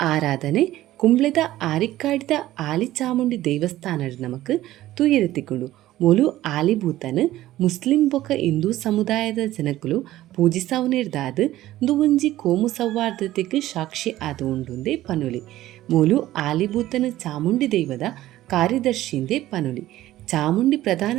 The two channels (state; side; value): quieter; left; 15.0 dB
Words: ಆರಾಧನೆ ಕುಂಬ್ಳೆದ ಆರಿಕ್ಕಾಡಿದ ಆಲಿ ಚಾಮುಂಡಿ ದೇವಸ್ಥಾನಡ್ ನಮಕ್ ತುಯರೆತ್ತಿಕೊಂಡು ಮೂಲು ಆಲಿಭೂತನು ಮುಸ್ಲಿಂ ಬೊಕ ಹಿಂದೂ ಸಮುದಾಯದ ಜನಕುಲು ಪೂಜಿಸವುನಿರ್ದಾದ ಒಂಜಿ ಕೋಮು ಸೌಹಾರ್ದತೆಗೆ ಸಾಕ್ಷಿ ಆದ ಉಂಡುಂದೆ ಪನುಲಿ. ಮೂಲು ಆಲಿಭೂತನ ಚಾಮುಂಡಿ ದೈವದ ಕಾರ್ಯದರ್ಶಿಂದೆ ಪನುಲಿ. ಚಾಮುಂಡಿ ಪ್ರಧಾನ